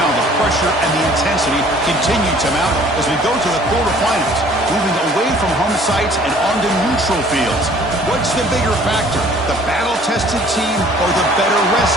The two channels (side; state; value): both; normal; correlation 0.54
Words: the pressure and the intensity continue to mount as we go to the quarterfinals, moving away from home sites and onto neutral fields. What's the bigger factor, the battle-tested team or the